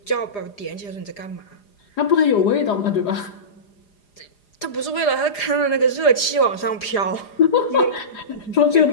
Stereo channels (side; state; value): right; late; 4.9 ms